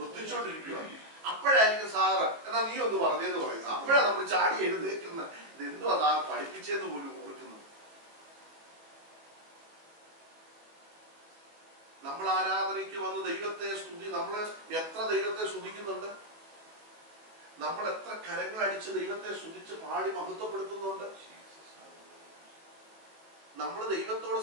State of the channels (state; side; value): late; left; 19 ms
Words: അപ്പോഴായിരിക്കും സാറ് എന്നാ നീ ഒന്ന് പറഞ്ഞേന്ന് പറയുന്നു. അപ്പോഴാണ് നമ്മൾ ചാടി എഴുന്നേക്കുന്നത്. ഇത് എന്തോ അതാ പഠിപ്പിച്ചെന്ന് പോലും ഓർക്കുന്നു. നമ്മൾ ആരാധനയ്ക്ക് വന്ന് ദൈവത്തെ സ്തുതി, നമ്മൾ എത്ര ദൈവത്തെ സ്തുതിക്കുന്നുണ്ട്, നമ്മൾ എത്ര കരങ്ങൾ അടിച്ച് ദൈവത്തെ സ്തുതിച്ച് പാടി മഹത്വപ്പെടുത്തുന്നുണ്ട്. നമ്മൾ ദൈവത്തോട്